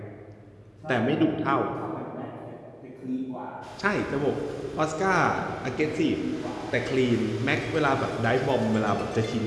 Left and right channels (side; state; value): both; identical; correlation 1.00